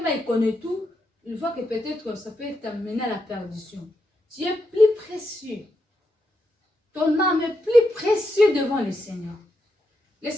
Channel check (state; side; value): normal; both; correlation 0.83